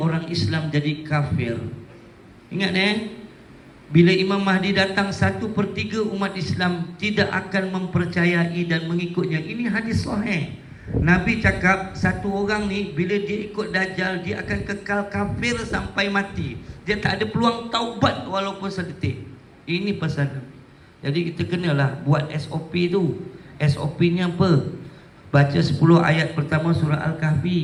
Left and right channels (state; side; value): identical; both; correlation 1.00